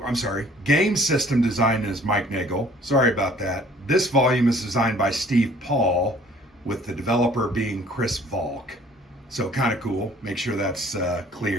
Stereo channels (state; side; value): normal; both; correlation 0.55